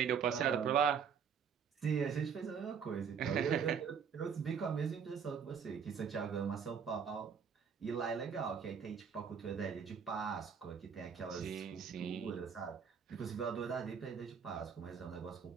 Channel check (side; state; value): left; quieter; 6.9 dB